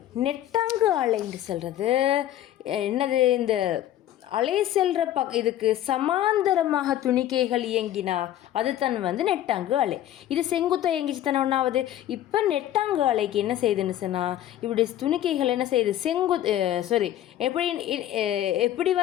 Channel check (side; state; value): right; quieter; 12.5 dB